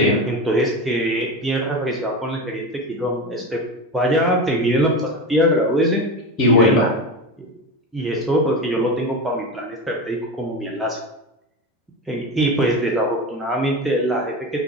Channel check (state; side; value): normal; both; correlation 0.23